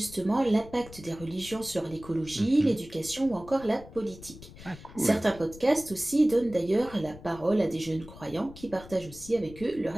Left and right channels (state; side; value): noise; left; rumble, 17 dB below the sound